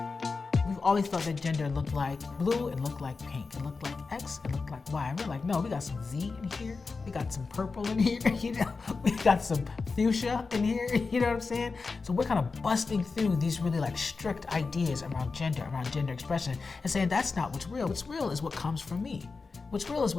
We've always thought that gender looked like blue, it looked like pink, it looked like X, it looked like Y. And we're like, no, we got some Z in here, we got some purple in here, you know, we got some fuchsia in here, you know what I'm saying? So we're kind of busting through these really like strict ideas around gender expression, and saying that's not what's real. What's real is what comes from me. What's real is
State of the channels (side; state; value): right; quieter; 4.3 dB